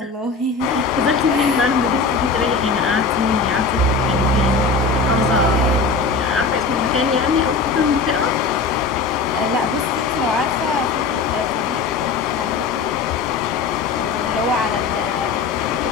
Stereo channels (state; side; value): quieter; right; 4.4 dB